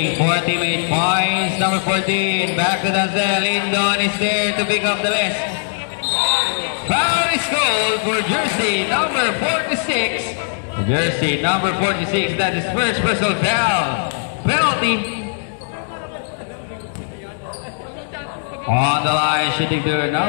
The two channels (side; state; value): right; silent; digital silence